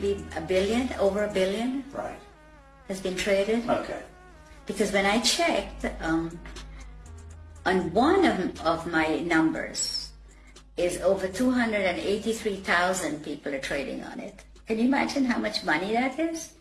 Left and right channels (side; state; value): both; identical; correlation 1.00